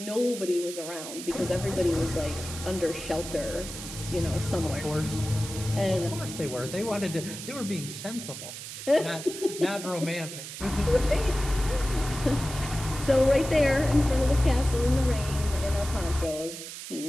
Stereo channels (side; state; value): right; noise; hiss, 10 dB below the sound